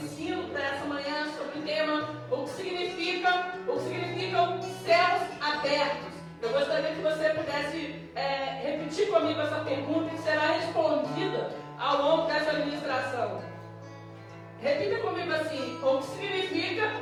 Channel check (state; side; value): identical; both; correlation 1.00